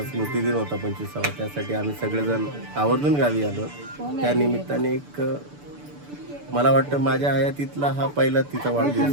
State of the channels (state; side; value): late; left; 6.9 ms